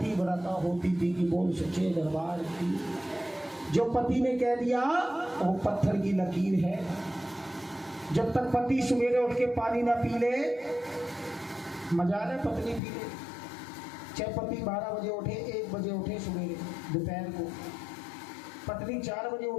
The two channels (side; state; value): right; drops out; at 12.8 s